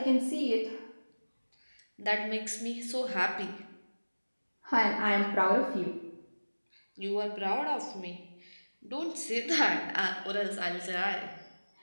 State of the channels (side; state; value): both; inverted; correlation -1.00